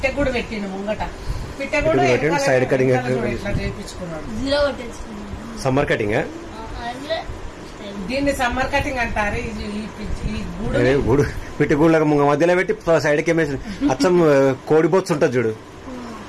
కూడా పెట్టిండు ముంగట. పిట్టె కూడా సైడ్ కటింగ్ ఇట్లా చేయించుకున్నాడు. సమ్మర్ కటింగ్, దీన్ని సమ్మర్ కటింగ్ అంటారు. ఈ గూడు పిట్టి గూళ్ళకి మధ్యలో పెట్టి సైడ్ కి అచ్చం కోడి బొత్స్ ఉంటుంది చూడు,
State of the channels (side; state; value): both; identical; correlation 1.00